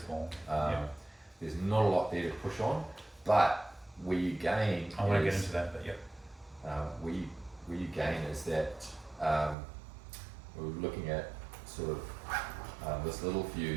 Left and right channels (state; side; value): drops out; left; at 9.6 s